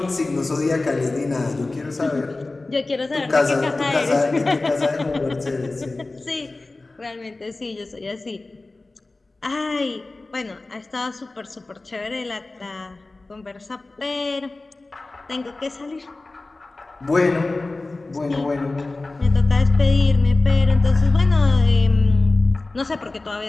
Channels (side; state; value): right; quieter; 3.2 dB